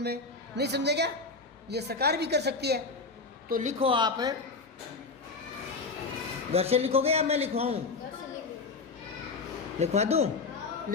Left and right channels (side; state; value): right; quieter; 4.0 dB